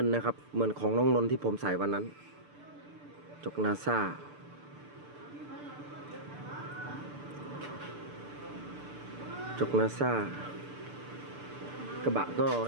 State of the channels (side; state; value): left; late; 6.8 ms